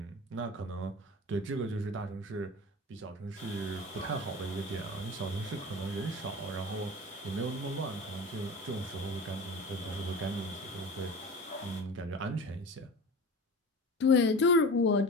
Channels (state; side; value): normal; both; correlation 0.34